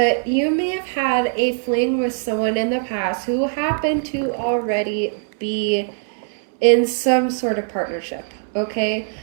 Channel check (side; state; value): left; silent; 65 dB below the other